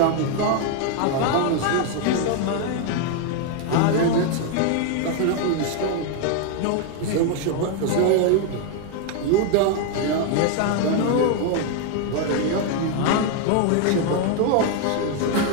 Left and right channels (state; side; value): different; both; correlation 0.00